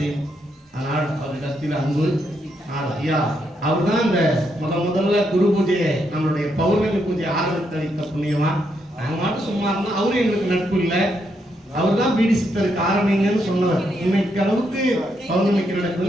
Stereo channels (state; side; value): normal; both; correlation 0.78